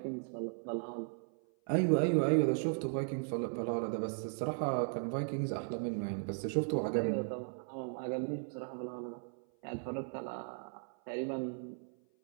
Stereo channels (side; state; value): left; silent; 53 dB below the other